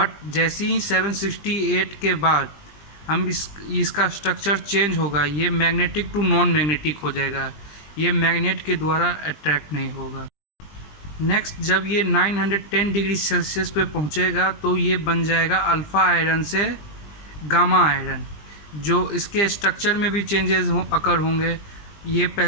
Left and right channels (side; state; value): right; late; 20 ms